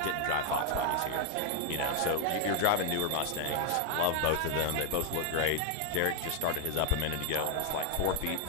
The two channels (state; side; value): different; both; correlation 0.00